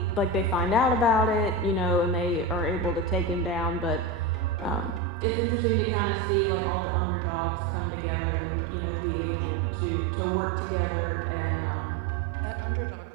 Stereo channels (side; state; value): left; drops out; at 5.0 s